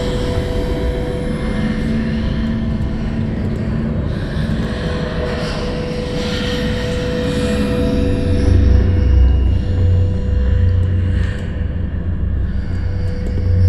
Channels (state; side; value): identical; both; correlation 1.00